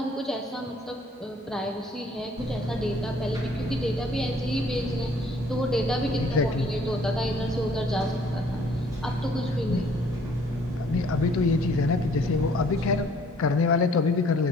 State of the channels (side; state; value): both; normal; correlation 0.59